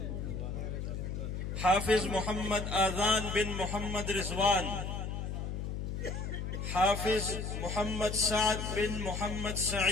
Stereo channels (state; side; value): noise; left; hum, 4 dB below the sound